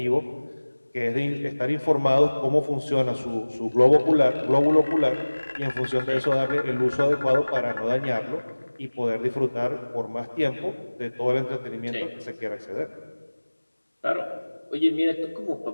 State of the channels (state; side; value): inverted; both; correlation -1.00